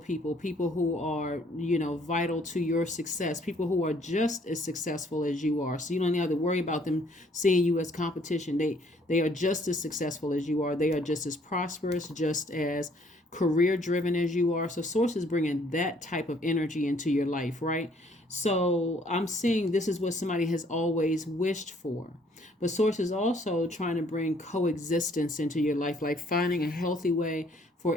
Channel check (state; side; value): normal; both; correlation 0.63